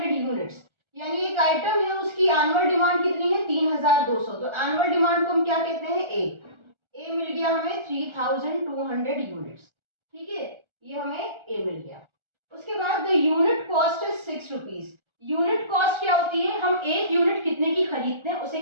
units, यानी एक आइटम है उसकी एनुअल डिमांड कितनी है 3200, तो एनुअल डिमांड को हम क्या कहते हैं ए मिल गया हमें 3200 यूनिट्स, ठीक है, ये हमें ए मिल गया। उसके बाद the unit cost is 6 rupees, unit cost क्या होती है, हम एक यूनिट कितने की खरीदते हैं उसे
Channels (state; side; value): late; left; 1.4 ms